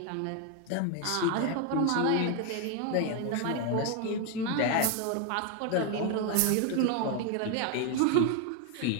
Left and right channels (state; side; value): different; both; correlation 0.01